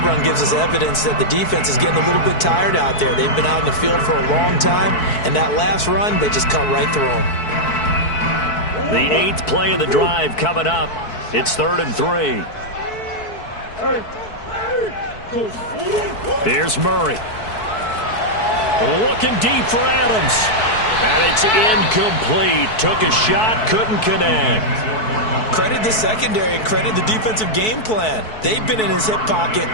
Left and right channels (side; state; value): right; late; 4.6 ms